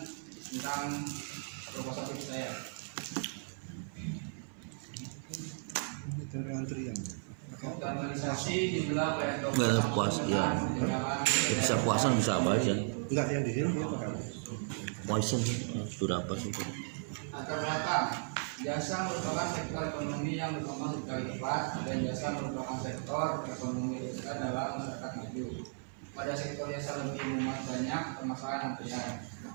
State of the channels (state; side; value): silent; left; 54 dB below the other